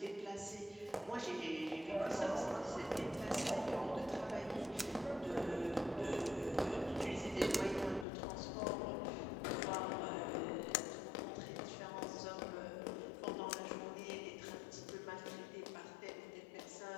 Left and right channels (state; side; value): drops out; right; at 8.1 s